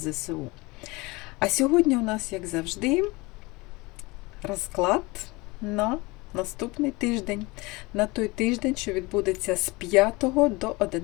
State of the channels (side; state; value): right; quieter; 23.8 dB